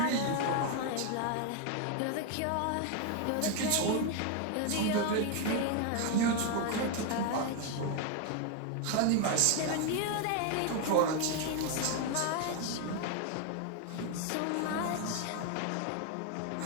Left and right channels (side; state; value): both; different; correlation 0.01